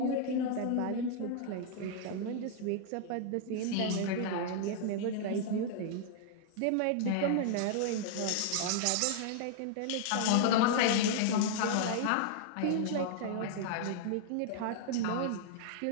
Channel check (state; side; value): different; both; correlation -0.01